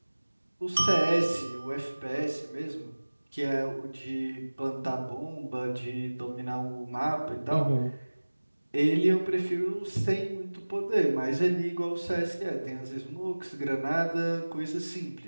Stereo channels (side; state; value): both; inverted; correlation -1.00